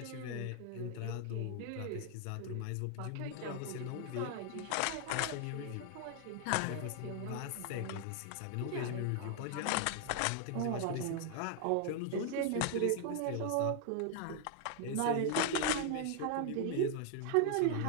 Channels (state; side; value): different; both; correlation 0.00